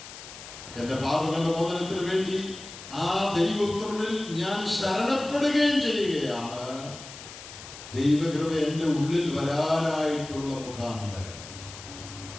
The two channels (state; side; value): noise; left; hiss, 14 dB below the sound